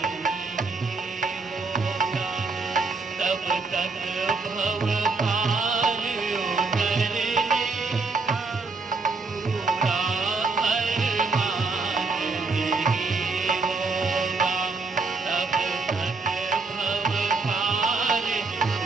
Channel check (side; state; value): left; quieter; 4.0 dB